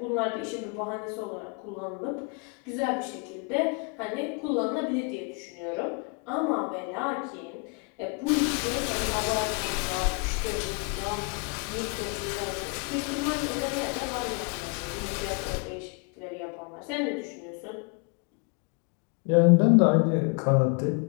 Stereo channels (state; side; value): quieter; right; 34.2 dB